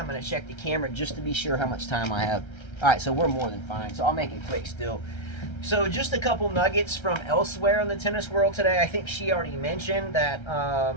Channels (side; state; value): right; late; 1.3 ms